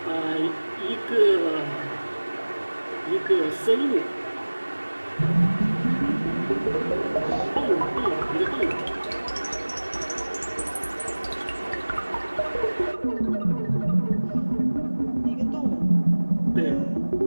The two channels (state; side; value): inverted; both; correlation -1.00